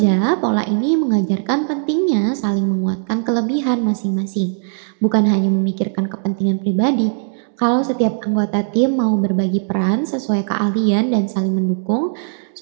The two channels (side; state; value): left; silent; digital silence